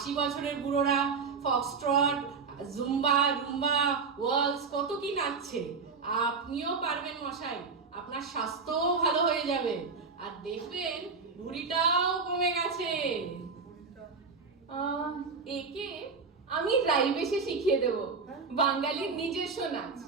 বছরের বুড়োরা ফক্সট্রট জুম্বা রুম্বা ওয়ালস কত কি নাচছে। আপনিও পারবেন মশাই, আপনার স্বাস্থ্যও ভালো হয়ে যাবে, আর দেখবেন ভুঁড়িটাও কমে গেছে। একে আমি রাইবেশে শিখিয়ে দেব বাঙালির নিজস্ব নাচ।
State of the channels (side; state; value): left; quieter; 4.9 dB